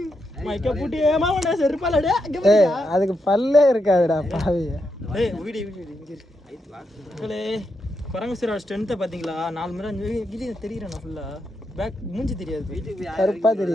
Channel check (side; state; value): both; normal; correlation 0.83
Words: மைக்க பூட்டி மாமண்டா செருப்பாலடே. அதுக்கு பல்லே இருக்காதுடா பாவிய. குரங்கு சாரோட ஸ்ட்ரென்த்தை பாத்தீங்களா? 4 முறை இது தெரியுறேன் நான் ஃபுல்லா. பேக் மூஞ்சி தெரியாது, கருப்பா